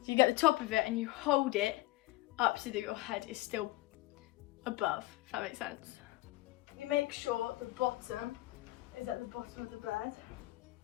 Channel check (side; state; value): right; quieter; 18.9 dB